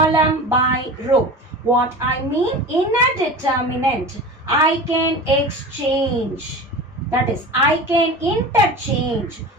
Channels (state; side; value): normal; both; correlation 0.32